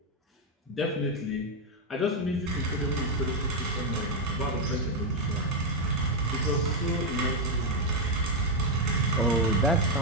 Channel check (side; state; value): both; normal; correlation 0.03